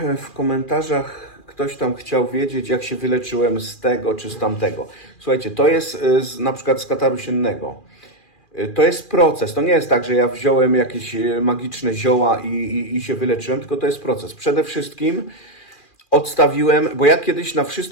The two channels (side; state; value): right; late; 2.4 ms